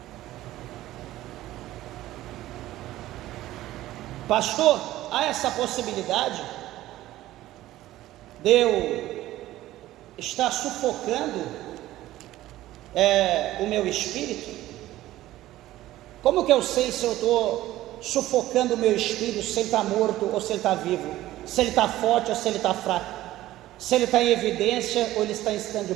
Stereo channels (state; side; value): quieter; left; 15.3 dB